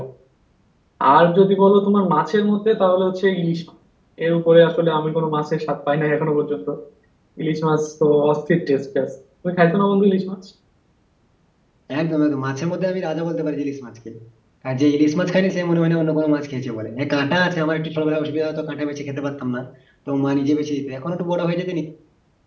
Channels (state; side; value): identical; both; correlation 1.00